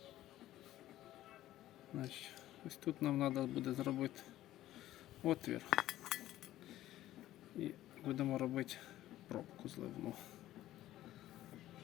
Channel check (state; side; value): quieter; right; 14.3 dB